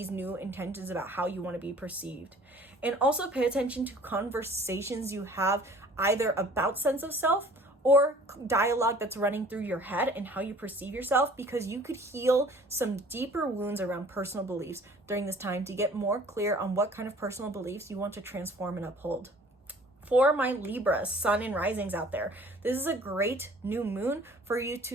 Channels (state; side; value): normal; both; correlation 0.51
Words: new intentions about how you want to be perceived. And also pay attention to conversations you have either about sense of self or dialogue that's running through your head and how you perceive yourself, because you could heal some deeper wounds around personal beliefs during this time to get more clear on what kind of personal beliefs you want to transform and uphold. For my Libra, sun and risings out there, this is a great new moon for you